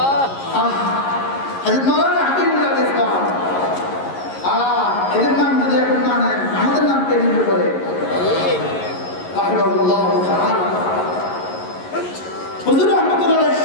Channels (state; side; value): late; right; 11 ms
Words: হযরত মাওলানা হাকিমুল্লাহ ইসলাম এদের নাম যদি এখন না নেন, আমাদের নাম কে নিবে বলে? রাহিমাহুল্লাহ তাআলা। হুজুর রাহমাতুল্লাহ